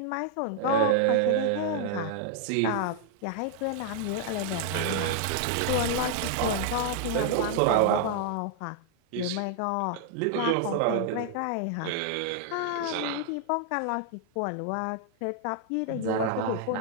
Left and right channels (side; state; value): both; different; correlation -0.01